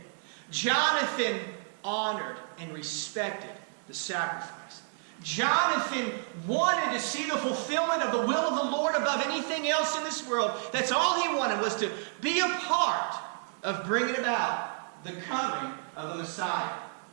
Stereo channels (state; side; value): silent; left; 58 dB below the other